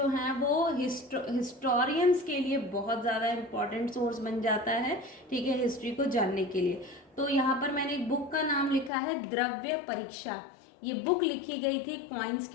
हैं वो हिस्टोरियंस के लिए बहुत ज़्यादा इंपॉर्टेंट सोर्स बन जाता है, ठीक है, हिस्ट्री को जानने के लिए। तो यहाँ पर मैंने एक बुक का नाम लिखा है द्रव्य परीक्षा। ये बुक लिखी गई थी कॉइन्स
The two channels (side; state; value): right; drops out; at 8.9 s